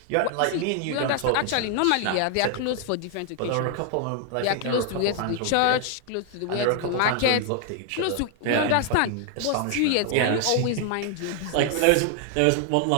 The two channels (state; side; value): different; both; correlation 0.00